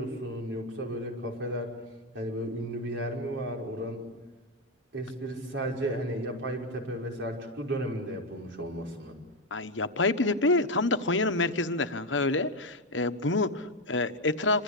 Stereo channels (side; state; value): both; normal; correlation 0.07